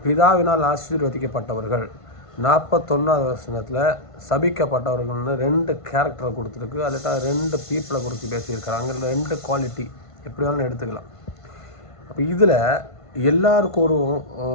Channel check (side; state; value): right; late; 1.5 ms